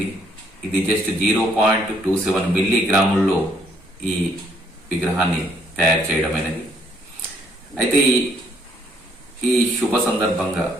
ఇది జస్ట్ 0.27 మిల్లీగ్రాముల్లో ఈ విగ్రహాన్ని తయారు చేయడం అనేది. అయితే ఈ శుభ సందర్భంగా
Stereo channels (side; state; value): both; normal; correlation 0.67